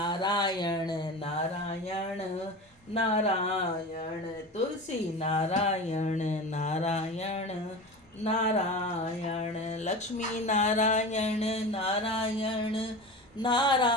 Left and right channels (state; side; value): normal; both; correlation 0.30